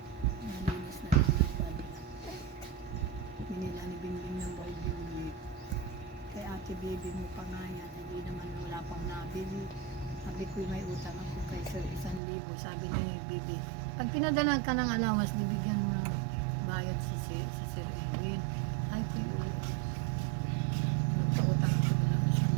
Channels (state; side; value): drops out; left; at 12.2 s